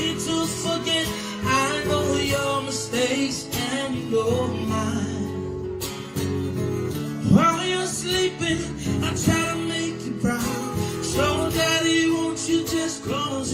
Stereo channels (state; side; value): identical; both; correlation 1.00